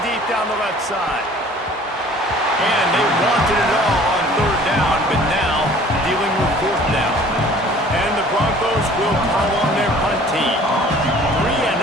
deep down the left side. And they wanted it all on third down, but now dealing with fourth down. And the Broncos will call on their punt team. 3 and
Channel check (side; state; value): both; normal; correlation 0.50